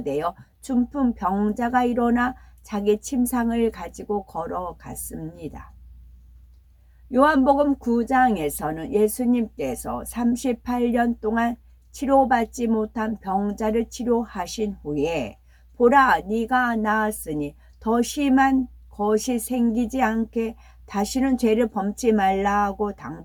중풍병자가 일어나 자기 침상을 가지고 걸어갔습니다. 요한복음 9장에서는 예수님께서 38년 동안 치료받지 못한 병자를 치료하신 후에 보라 네가 나았으니 더 심한 것이 생기지 않게 다시는 죄를 범치 말라고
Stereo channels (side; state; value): both; identical; correlation 1.00